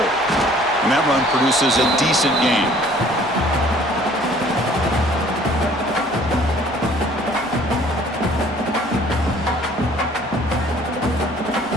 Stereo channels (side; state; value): both; normal; correlation 0.55